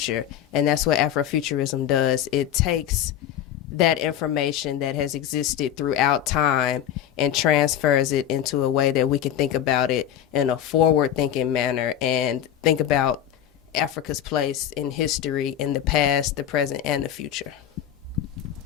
And that's what Afrofuturism does. It takes that information that has existed throughout time and transfers it into a way that we can think about it in a forward-thinking manner and think about Africa's place in history in the past, the present, and the future.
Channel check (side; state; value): right; quieter; 10.5 dB